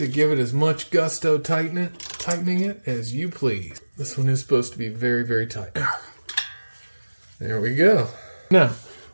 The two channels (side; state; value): both; inverted; correlation -1.00